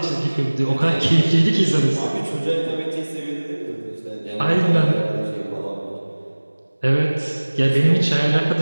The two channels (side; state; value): both; inverted; correlation -1.00